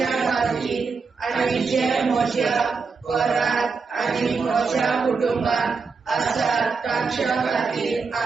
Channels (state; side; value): quieter; left; 4.9 dB